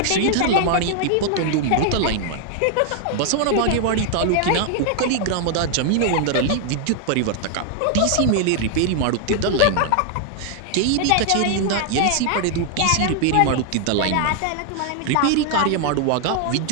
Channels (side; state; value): both; different; correlation 0.00